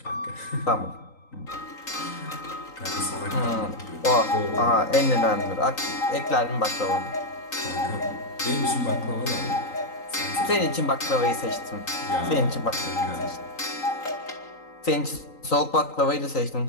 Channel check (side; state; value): right; late; 3.9 ms